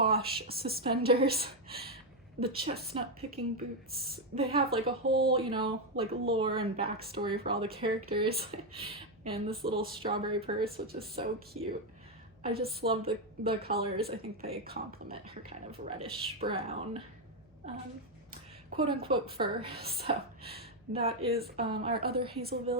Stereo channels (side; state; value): left; noise; hum, 29 dB below the sound